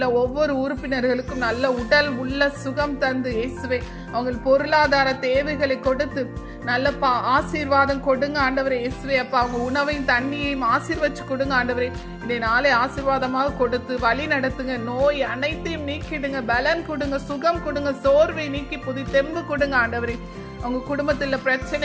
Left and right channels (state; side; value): identical; both; correlation 1.00